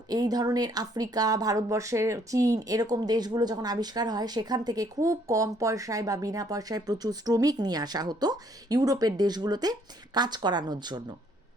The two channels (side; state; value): both; normal; correlation 0.65